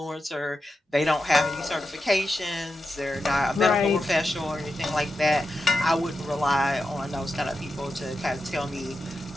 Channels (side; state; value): both; normal; correlation 0.89